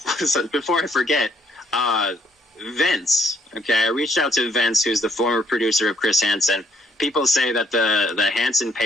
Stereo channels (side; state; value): both; normal; correlation 0.68